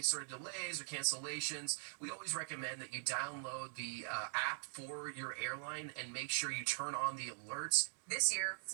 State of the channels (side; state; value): left; silent; digital silence